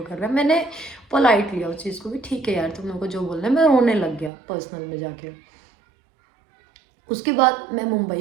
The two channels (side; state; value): left; drops out; at 4.3 s